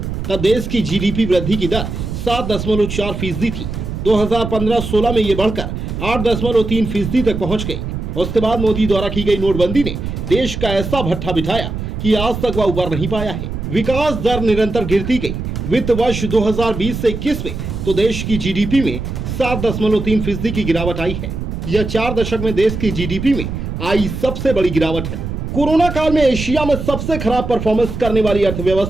तब देश की जीडीपी वृद्धि की दर 7.4% थी। 2015-16 में ये बढ़कर 8.3% तक पहुंच गई। उसके बाद मोदी द्वारा की गई नोटबंदी ने देश का ऐसा भट्ठा बिठाया कि आज तक वह उबर नहीं पाया है। विकास दर निरंतर गिरती गई। वित्त वर्ष 2020 से 21 में तो देश की जीडीपी में 7.3% की गिरावट आई है। यह 4 दशक में देश की जीडीपी में आई सबसे बड़ी गिरावट है। कोरोना काल में एशिया में सबसे खराब परफॉर्मेंस करने वाली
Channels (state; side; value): noise; right; rumble, 5 dB below the sound